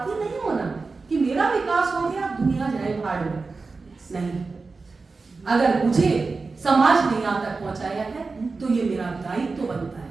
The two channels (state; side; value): quieter; left; 4.1 dB